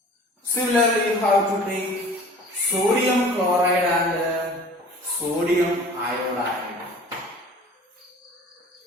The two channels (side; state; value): both; normal; correlation 0.45